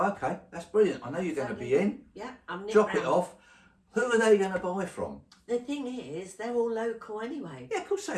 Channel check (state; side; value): identical; both; correlation 1.00